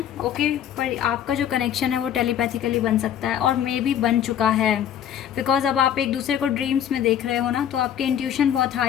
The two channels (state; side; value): quieter; right; 10.0 dB